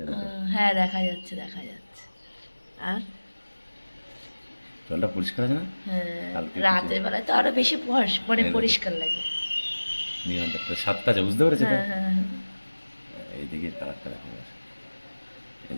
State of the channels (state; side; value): inverted; both; correlation -1.00